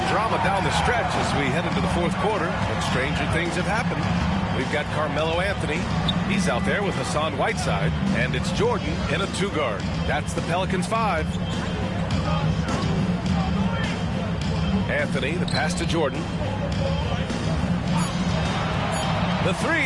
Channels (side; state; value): both; identical; correlation 1.00